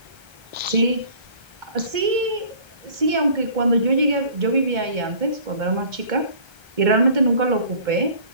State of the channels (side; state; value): left; late; 1.3 ms